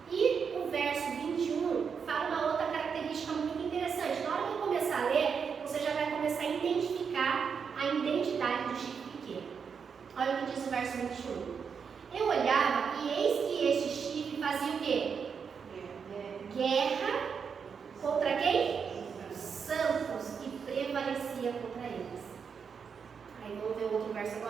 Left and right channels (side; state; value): left; quieter; 6.3 dB